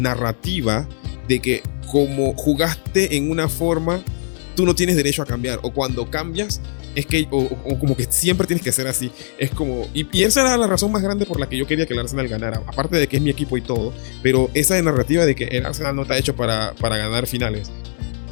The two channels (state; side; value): silent; right; 66 dB below the other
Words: de que como jugaste en una forma, tú no tienes derecho a cambiar, o cuando cambias es que o como que siempre tienes que ser así. Es como y esa era la razón más grande por la que yo quería que el Arsenal ganara, aparte de que es mi equipo y todo, pero esa narrativa de que el Arsenal no está hecho para ganar finales,